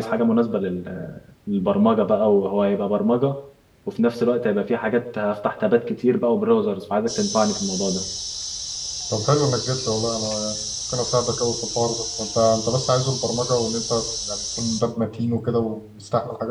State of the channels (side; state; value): both; identical; correlation 1.00